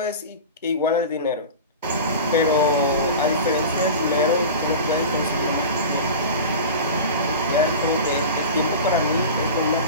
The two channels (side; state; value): both; inverted; correlation -0.31